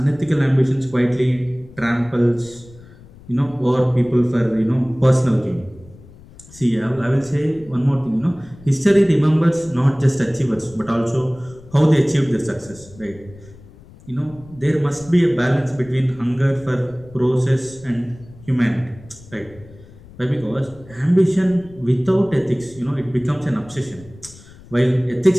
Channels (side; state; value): left; noise; rumble, 22 dB below the sound